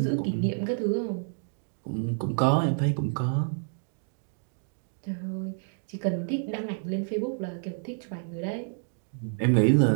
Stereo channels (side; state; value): left; silent; digital silence